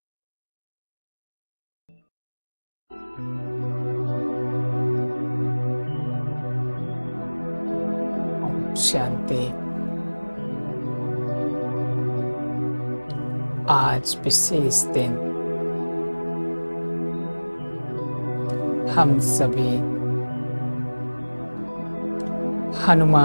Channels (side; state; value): both; inverted; correlation -1.00